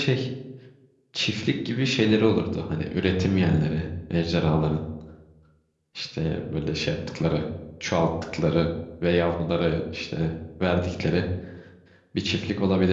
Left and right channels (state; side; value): identical; both; correlation 1.00